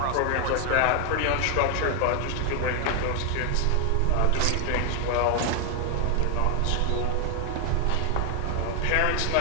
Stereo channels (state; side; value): different; both; correlation 0.00